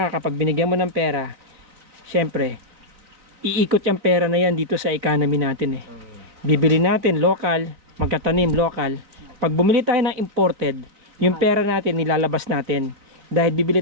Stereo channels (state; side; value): late; left; 4.0 ms